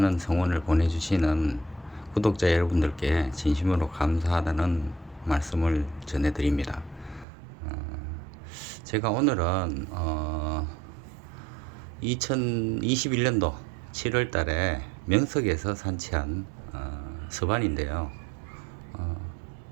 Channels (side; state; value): left; drops out; at 7.2 s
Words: 성원을 보내주시는 구독자 여러분들께 진심으로 감사하다는 말씀을 전해드립니다. 제가 오늘은 2021년도 7월 달에 명석에서 산치한 서반인데요.